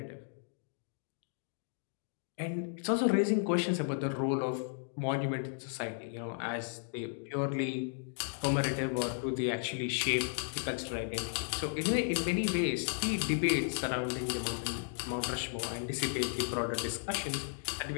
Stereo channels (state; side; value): silent; right; digital silence